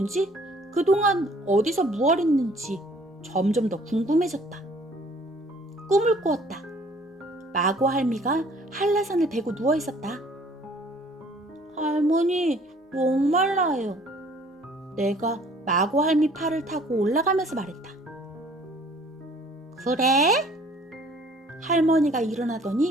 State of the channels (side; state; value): both; normal; correlation 0.56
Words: 그동안 어디서 무얼 했는지 점점 더 궁금해졌다. 꿈을 꾸었다. 마고 할미가 한라산을 베고 누워있었다. 할머니, 목말라요. 내가 마고 할미 팔을 타고 올라가면서 말했다. 그래? 할머니가